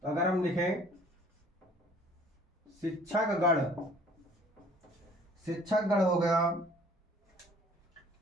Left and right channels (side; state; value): both; normal; correlation 0.54